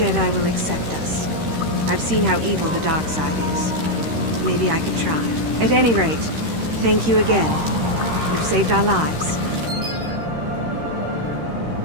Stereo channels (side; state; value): left; late; 13 ms